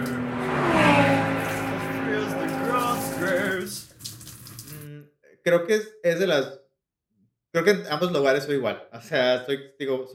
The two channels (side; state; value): both; identical; correlation 1.00